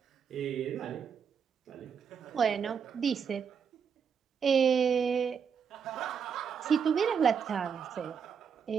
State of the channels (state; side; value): quieter; left; 6.8 dB